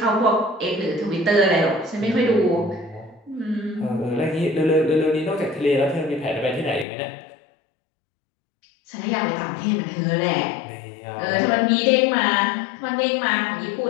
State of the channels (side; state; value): right; drops out; at 6.9 s